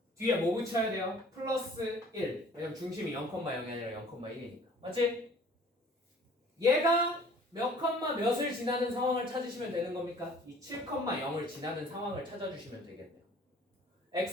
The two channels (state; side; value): normal; both; correlation 0.52